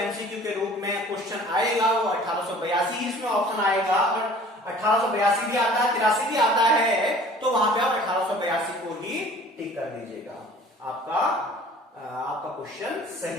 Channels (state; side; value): normal; both; correlation 0.48